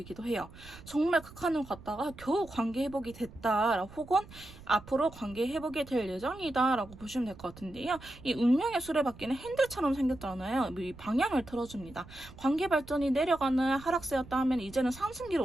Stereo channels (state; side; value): noise; right; rumble, 18 dB below the sound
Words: 해요. 정말 극한을 갔다가 겨우 관계 회복이 됐다 혹은 앞으로 관계 회복이 될 예정이다 라고 보시면 될 것 같은데요. 이 운명의 수레바퀴는 핸들처럼 생겼잖아요. 이 방향을 틀어줍니다. 관계 발전이 내려가는 하락세였다 하면 이제는 상승기를